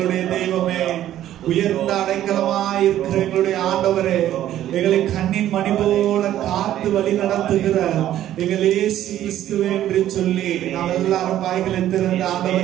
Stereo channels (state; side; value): quieter; left; 12.3 dB